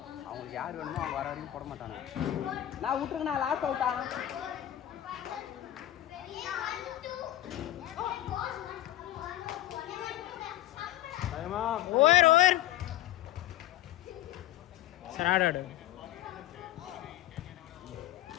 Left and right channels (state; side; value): quieter; right; 14.0 dB